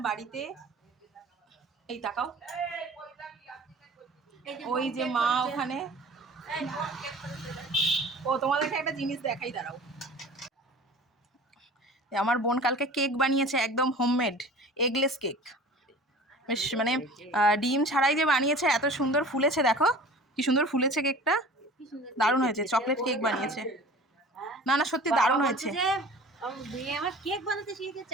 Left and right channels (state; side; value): normal; both; correlation 0.42